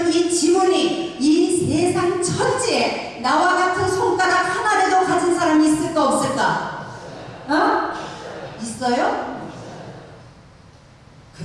이 지문이 이 세상 천지에 나와 같은 손가락 하나라도 가진 사람이 있을까 없을까? 어? 있어요?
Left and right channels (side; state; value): both; identical; correlation 1.00